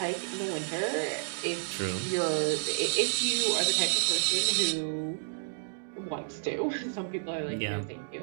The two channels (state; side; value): silent; left; digital silence